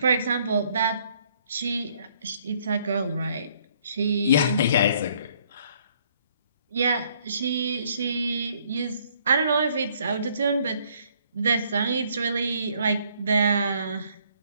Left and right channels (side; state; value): both; inverted; correlation -0.65